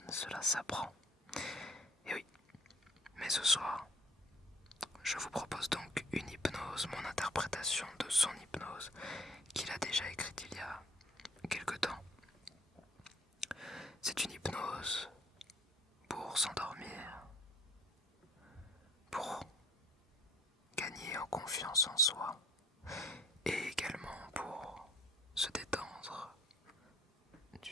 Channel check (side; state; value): both; normal; correlation 0.56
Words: cela s'apprend. Et oui, mais ce soir, je vous propose donc une hypnose, mon interprétation de son hypnose, qu'il a déjà écrite il y a quelque temps. C'est une hypnose pour s'endormir, pour gagner en confiance en soi, et également pour se détendre